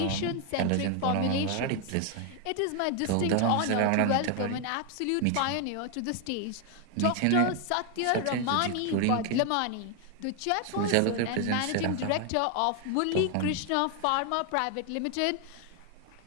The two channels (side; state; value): both; different; correlation 0.01